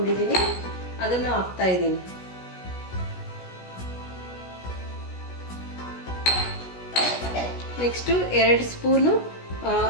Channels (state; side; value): late; right; 16 ms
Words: ಅದನ್ನು ಹಾಕ್ತಾ ಇದ್ದೀನಿ. ನೆಕ್ಸ್ಟು 2 ಸ್ಪೂನು